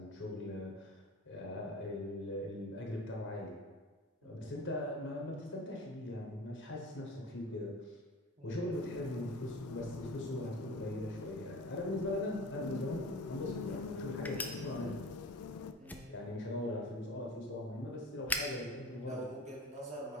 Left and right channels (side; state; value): both; normal; correlation 0.36